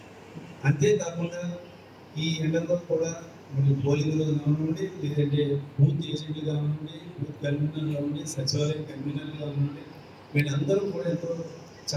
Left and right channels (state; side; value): identical; both; correlation 1.00